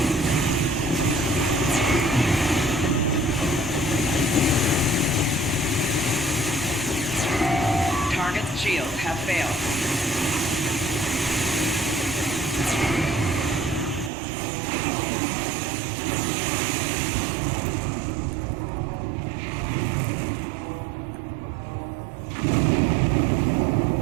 Target's shields have failed.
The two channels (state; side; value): drops out; left; at 14.1 s